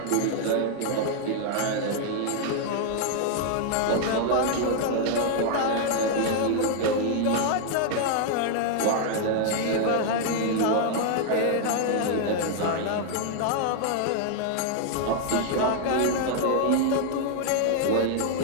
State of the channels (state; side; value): different; both; correlation 0.00